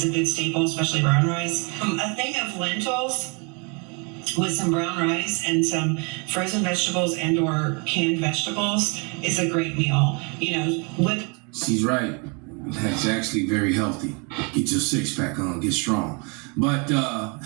a good staple, especially brown rice. A thing of lentils with some brown rice and some frozen vegetables and or canned vegetables is a great meal. You know, with She's right. That's actually very healthy. Get your six-pack on, get strong. But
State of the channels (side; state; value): left; quieter; 33.2 dB